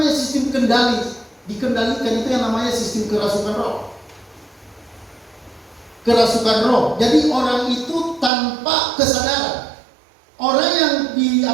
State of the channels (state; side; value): drops out; left; at 8.3 s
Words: sistem kendali. Dikendalikan itu yang namanya sistem kerasukan roh. Kerasukan roh. Jadi orang itu tanpa kesadaran. orang yang